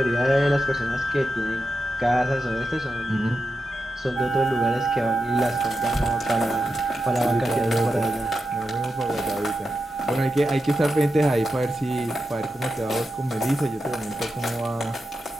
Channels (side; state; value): both; normal; correlation 0.89